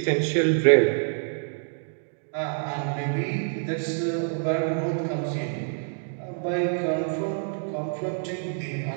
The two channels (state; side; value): silent; left; 60 dB below the other